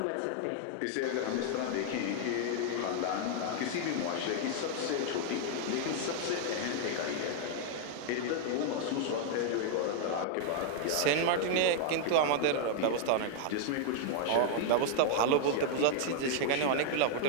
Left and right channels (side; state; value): both; different; correlation 0.00